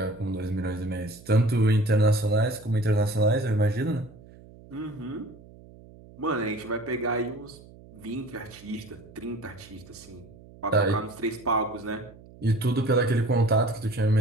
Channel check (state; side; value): noise; right; hum, 21 dB below the sound